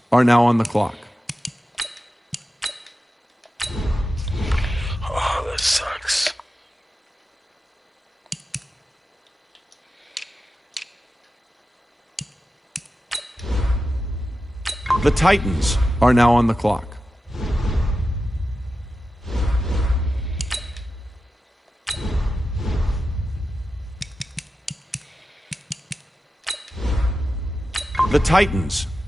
are now on the clock. Oh, that sucks. The Titans are now on the clock. The Titans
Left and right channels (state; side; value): normal; both; correlation 0.92